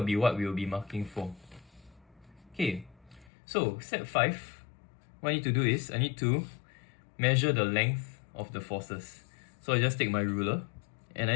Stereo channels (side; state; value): right; drops out; at 3.3 s